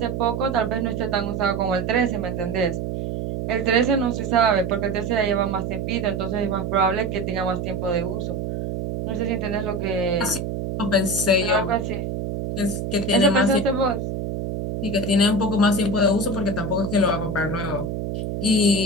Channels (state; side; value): noise; right; hum, 3 dB below the sound